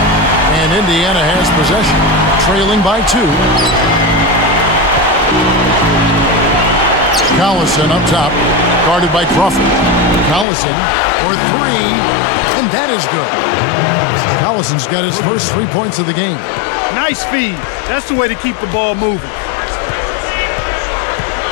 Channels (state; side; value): drops out; right; at 10.5 s